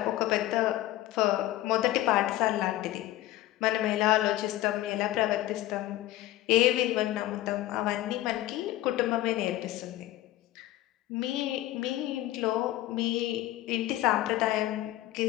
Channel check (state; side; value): quieter; right; 15.7 dB